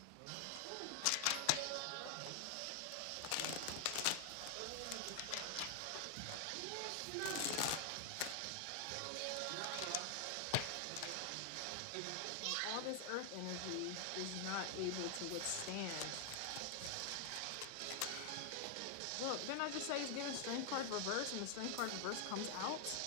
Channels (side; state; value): both; different; correlation 0.00